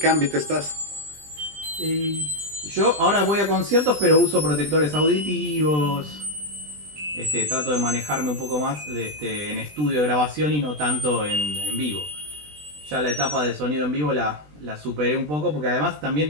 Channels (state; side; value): late; left; 20 ms